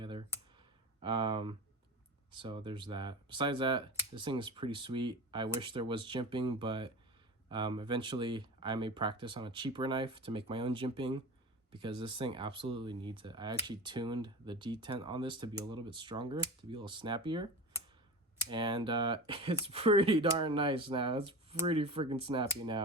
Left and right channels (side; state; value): both; normal; correlation 0.30